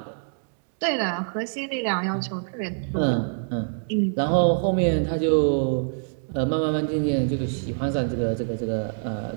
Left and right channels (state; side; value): silent; left; digital silence